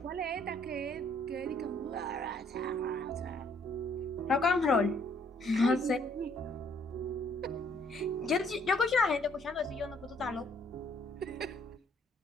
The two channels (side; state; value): both; normal; correlation 0.64